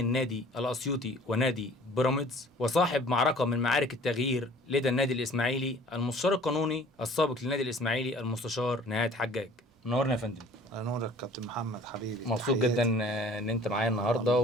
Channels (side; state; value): both; normal; correlation 0.50